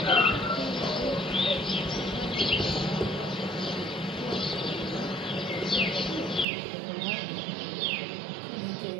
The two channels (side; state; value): left; drops out; at 6.5 s